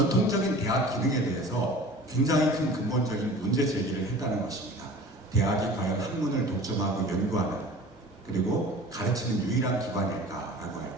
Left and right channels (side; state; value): both; normal; correlation 0.41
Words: 대학 기능에 대해서 굉장히 큰 근본적인 문제 제기를 했다는 것입니다. 대학이 과연 학문을 독점하고 연구하는 그리고 가르치는 유일한 기관일까라고 할